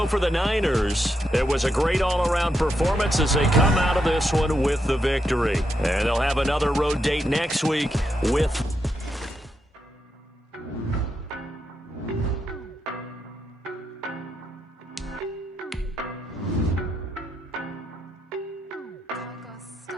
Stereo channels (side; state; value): both; normal; correlation 0.83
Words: for the Niners, it was a great all-around performance as they come out of this one with the victory. And they'll have another road date next week with...